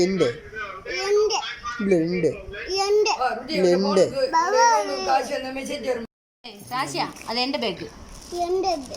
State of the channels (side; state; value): both; identical; correlation 1.00